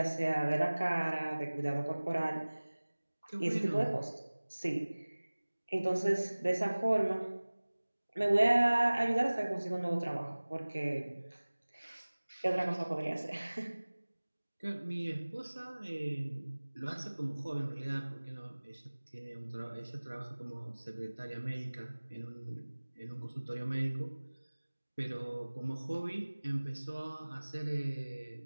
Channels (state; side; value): inverted; both; correlation -1.00